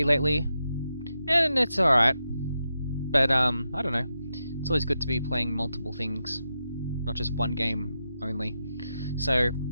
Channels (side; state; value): both; inverted; correlation -0.87